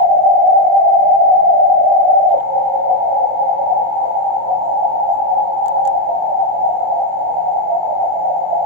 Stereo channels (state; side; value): late; left; 23 ms